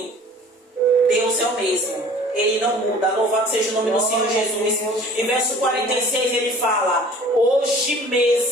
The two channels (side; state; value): both; normal; correlation 0.48